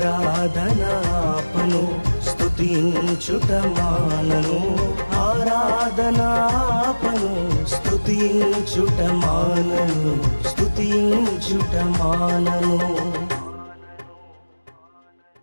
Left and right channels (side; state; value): both; inverted; correlation -1.00